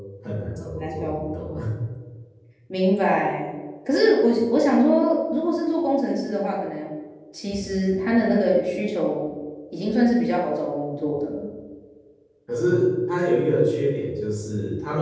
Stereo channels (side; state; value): both; identical; correlation 1.00